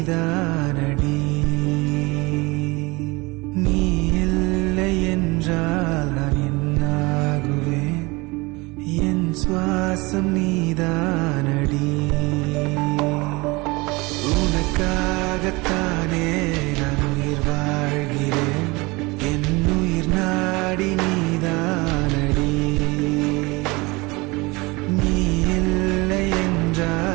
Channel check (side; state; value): left; quieter; 24.3 dB